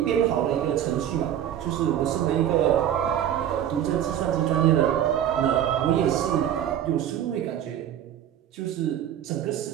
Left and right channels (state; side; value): quieter; left; 10.6 dB